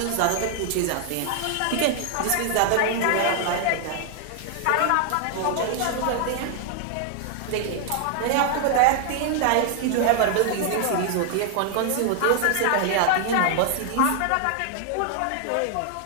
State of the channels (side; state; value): both; different; correlation 0.00